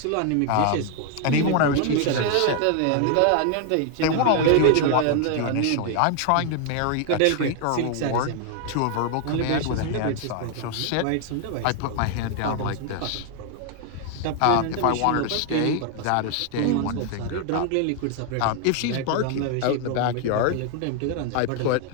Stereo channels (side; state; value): both; different; correlation 0.00